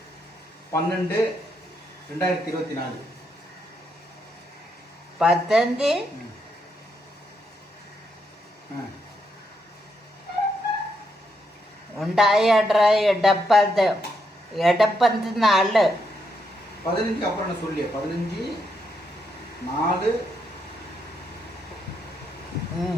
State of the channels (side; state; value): both; normal; correlation 0.79